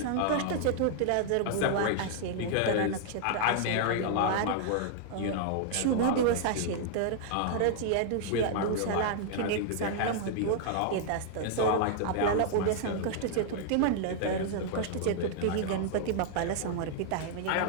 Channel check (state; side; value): different; both; correlation -0.01